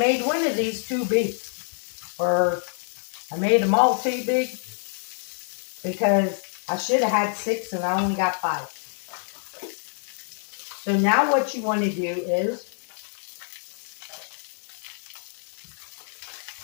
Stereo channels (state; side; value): silent; right; 61 dB below the other